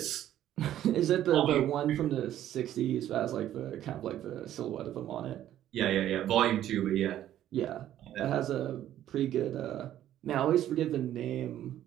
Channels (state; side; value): quieter; left; 12.1 dB